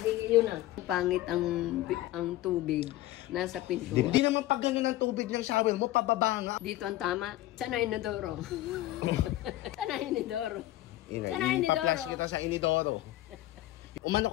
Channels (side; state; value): right; quieter; 15.8 dB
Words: yun na. Pangit ang tubig nasa pintuan. Hindi naman pag ganyan ang tubig ng shower mo, pababa nga. Dito ang tama. Sana inodoro. Sana inodoro. Sana inodoro. Ipa-flash kita sa inidoro. Umano